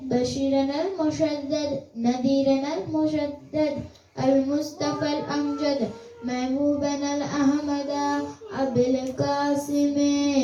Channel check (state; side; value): identical; both; correlation 1.00